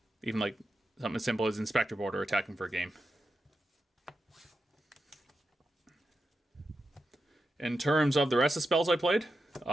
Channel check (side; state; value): both; normal; correlation 0.89